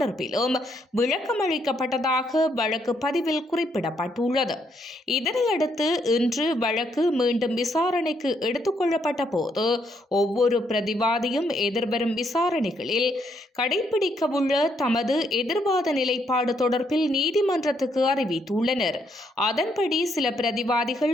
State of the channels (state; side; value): normal; both; correlation 0.74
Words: விளக்கமளிக்கப்பட்டதாக வழக்கு பதிவில் குறிப்பிடப்பட்டுள்ளது. இதனையடுத்து இன்று வழக்கு மீண்டும் விசாரணைக்கு எடுத்துக் கொள்ளப்பட்ட போது ஒவ்வொரு பிரதிவாதியும் எதிர்வரும் விசாரணைகளில் கடைபிடிக்கவுள்ள தமது எதிர்வாத நிலைப்பாடு தொடர்பில் நீதிமன்றத்துக்கு அறிவித்துள்ளனர். அதன்படி சில